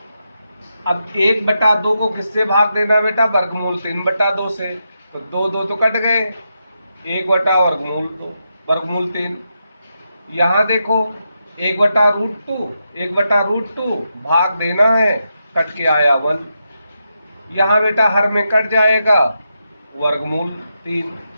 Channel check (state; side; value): inverted; both; correlation -0.85